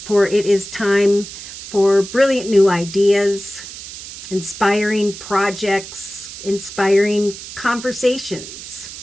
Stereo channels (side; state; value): right; noise; hiss, 12 dB below the sound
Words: For it is time for brilliant new ideas, inspiring projects, inspiring conversations.